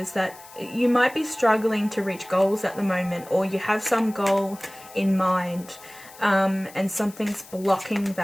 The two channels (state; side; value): noise; left; hiss, 20 dB below the sound